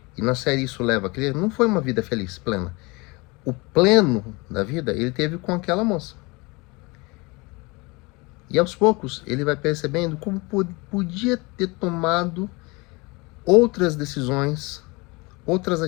e na série isso leva a crer, não foi uma vida feliz, plena. O pleno da vida ele teve com aquela moça. E aos poucos ele vai percebendo como podia ter tomado outras decisões, outras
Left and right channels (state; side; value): quieter; right; 25.9 dB